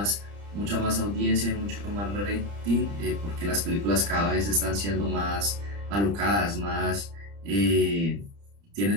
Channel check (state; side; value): late; left; 30 ms